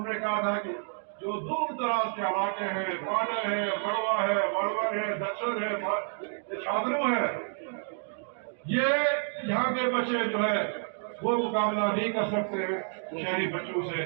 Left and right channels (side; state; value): left; silent; 58 dB below the other